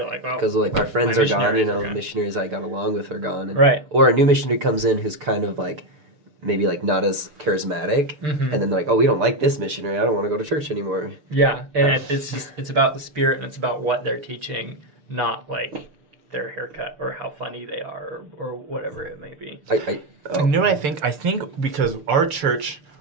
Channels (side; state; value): left; late; 6.7 ms